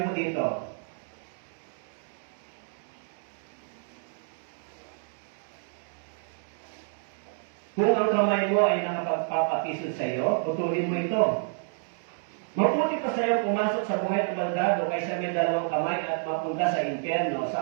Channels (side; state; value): left; silent; 59 dB below the other